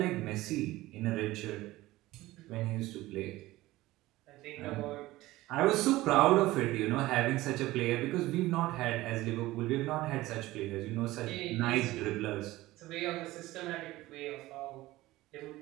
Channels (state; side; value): quieter; left; 17.8 dB